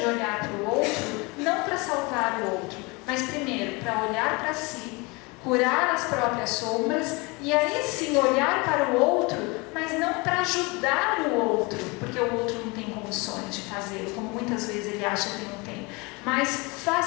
olhar para o outro, não para salvar o outro, mas primeiro para olhar para si, curar as próprias sombras e aí sim olhar para o outro, mas não para ajudar o outro, porque o outro não tem condições de fazê-lo, como muitas vezes ele acha que não tem, mas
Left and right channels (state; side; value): quieter; right; 26.9 dB